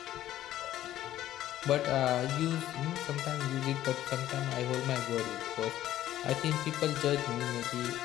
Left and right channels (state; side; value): quieter; right; 13.2 dB